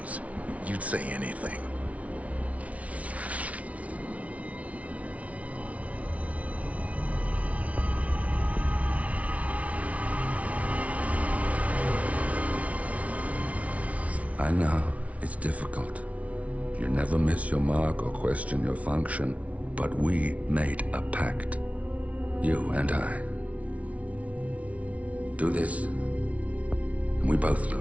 You'd say anything. I know, it's difficult. You never miss your mark or question your function, but we made a pact. You and I. Do this, and we both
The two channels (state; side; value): late; left; 0.066 ms